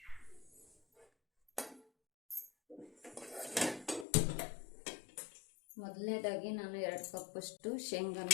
ಮೊದಲನೇದಾಗಿ ನಾನು 2 ಕಪ್ಪಷ್ಟು ಶೇಂಗಾನ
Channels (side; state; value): right; drops out; at 4.0 s